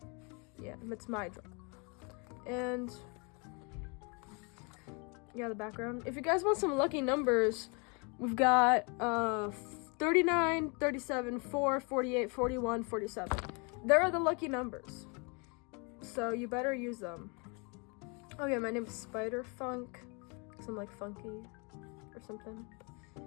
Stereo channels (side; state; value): right; quieter; 32.5 dB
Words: my drawing. And yeah, the background. If you guys want some lucky numbers, we've got 39, 37, 4, 48, 41, 47. There are the lucky numbers. So you better use them. Oh yeah, my name is Spider Funk, because I'm like funky or something.